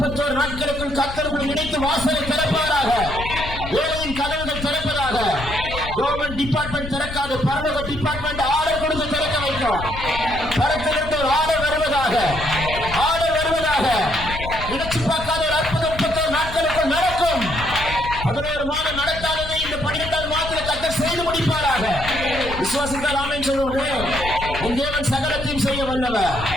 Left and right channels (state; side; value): noise; left; rumble, 9 dB below the sound